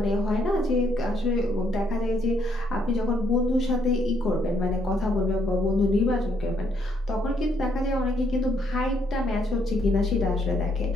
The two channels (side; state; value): both; normal; correlation 0.71